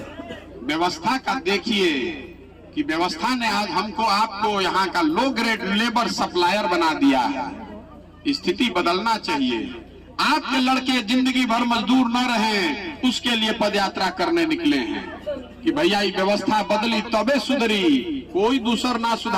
व्यवस्था का देखिए कि व्यवस्था ने आज हमको आपको यहाँ का लो ग्रेड लेबर सप्लायर बना दिया है। स्थिति बदलना चाहिए। आपके लड़के जिंदगी भर मजदूर न रहे, उसके लिए पदयात्रा करने निकले हैं कि भैया ये व्यवस्था बदली तबे सुधरी, कोई दूसर ना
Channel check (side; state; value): both; identical; correlation 1.00